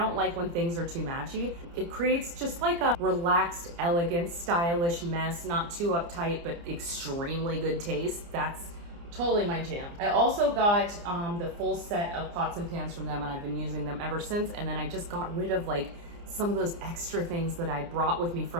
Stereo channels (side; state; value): left; late; 29 ms